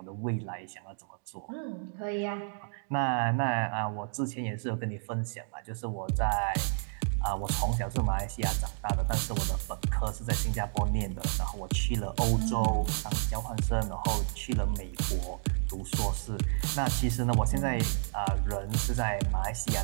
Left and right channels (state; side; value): silent; left; 57 dB below the other